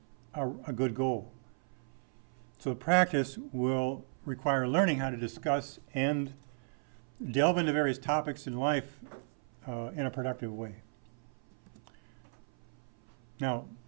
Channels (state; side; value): silent; left; 54 dB below the other